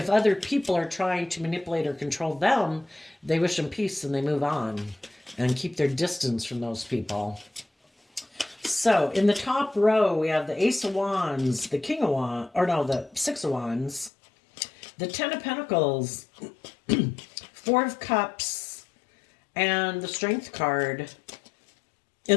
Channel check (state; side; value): drops out; right; at 14.1 s